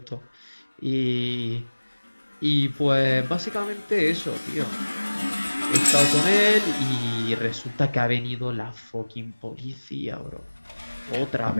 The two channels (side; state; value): both; inverted; correlation -1.00